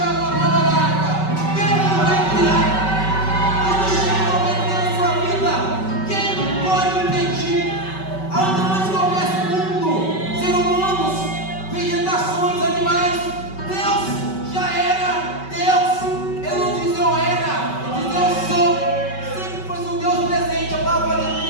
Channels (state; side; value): late; right; 5.3 ms